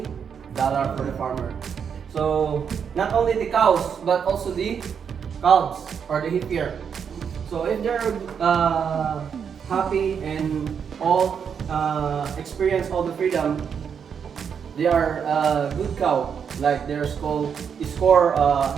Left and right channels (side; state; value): left; quieter; 7.2 dB